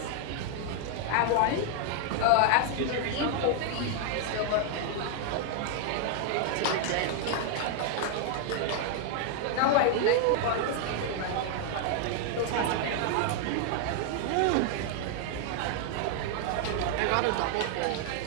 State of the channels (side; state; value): both; different; correlation 0.00